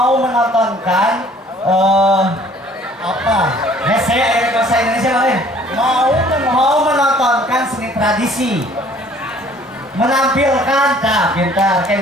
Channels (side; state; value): both; normal; correlation 0.55